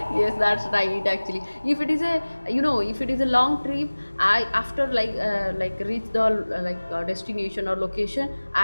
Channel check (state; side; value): inverted; both; correlation -1.00